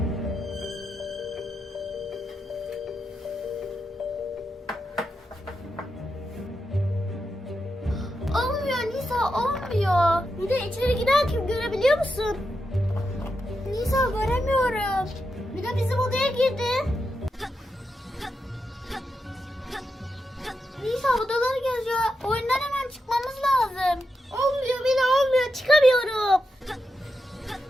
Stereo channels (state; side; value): normal; both; correlation 0.86